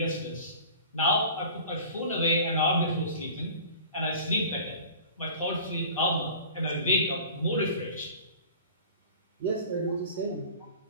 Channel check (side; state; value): both; inverted; correlation -0.42